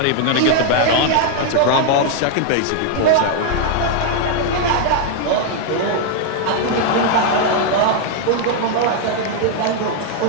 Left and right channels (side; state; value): both; different; correlation 0.00